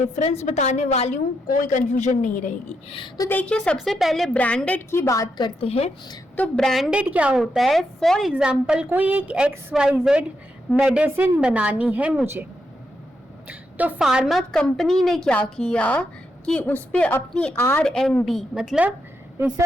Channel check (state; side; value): normal; both; correlation 0.82